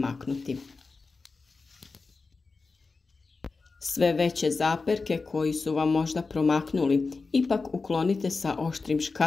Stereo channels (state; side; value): quieter; right; 4.1 dB